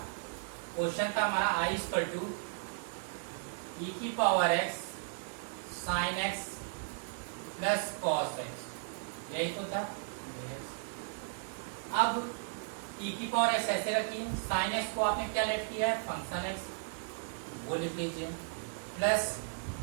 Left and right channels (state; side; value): silent; left; digital silence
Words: क्वेश्चन था हमारा आई इक्वल टू ई की power x sign x plus cos x, यही तो था। अब ई की पावर एक्स ऐसे रखी, साइन एक्स को आपने क्या लेट किया है? फंक्शन एक्स, वो लिख लीजिए, प्लस